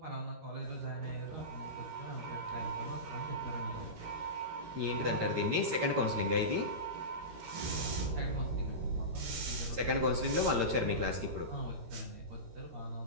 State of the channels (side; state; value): left; late; 13 ms